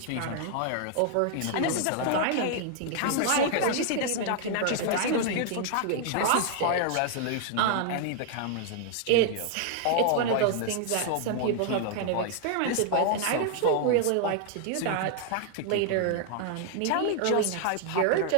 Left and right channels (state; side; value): different; both; correlation 0.00